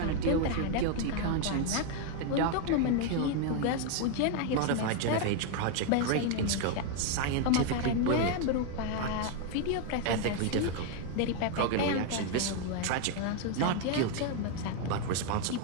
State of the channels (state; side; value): different; both; correlation 0.01